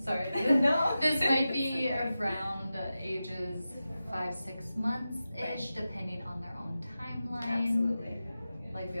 Sorry. No. This might be around ages 5-6 months-ish, depending on their own timeline. Absolutely. Like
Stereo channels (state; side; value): inverted; both; correlation -0.93